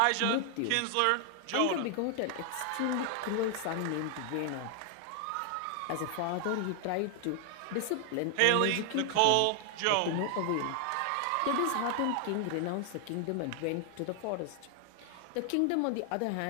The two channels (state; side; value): different; both; correlation 0.00